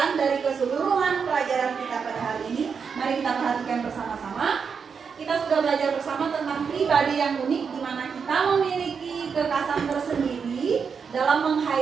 dari keseluruhan pelajaran kita pada hari ini. Mari kita perhatikan bersama-sama. Kita sudah belajar bersama tentang pribadi yang unik, di mana kita memiliki kekhasan tersendiri dalam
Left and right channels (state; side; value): quieter; left; 6.1 dB